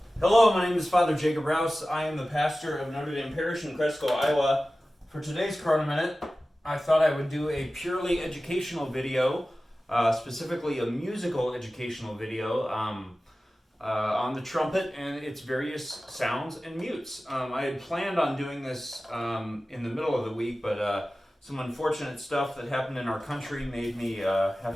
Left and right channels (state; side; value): normal; both; correlation 0.96